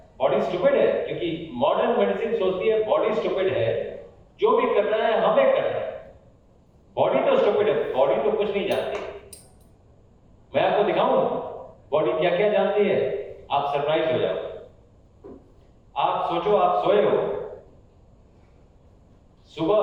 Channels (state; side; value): identical; both; correlation 1.00